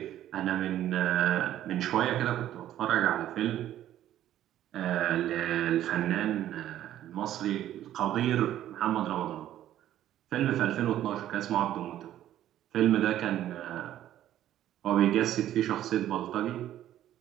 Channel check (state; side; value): quieter; left; 12.3 dB